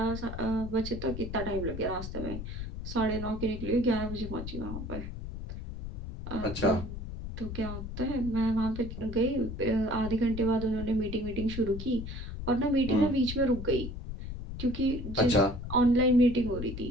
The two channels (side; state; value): left; noise; rumble, 7 dB below the sound